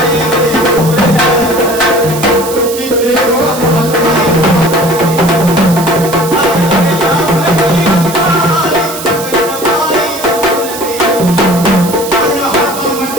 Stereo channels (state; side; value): noise; right; hiss, 10 dB below the sound